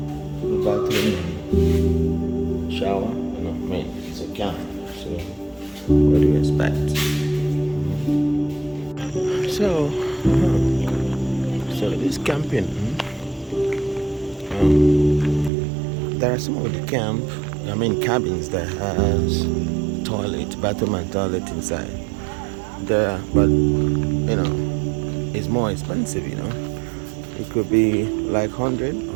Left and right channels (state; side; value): drops out; left; at 15.5 s